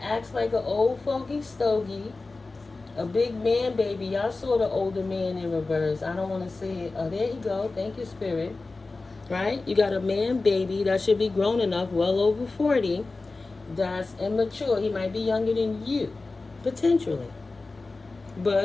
acts like an old fogey stogie. A big man baby. Y'all saw the older man in reverse. I don't want to say it. Oh, there you go. Thank you, Spirit. Right? You got a man baby that should be grown enough, well over 40. That's immature. He might be younger than you, potentially.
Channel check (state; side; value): quieter; right; 3.5 dB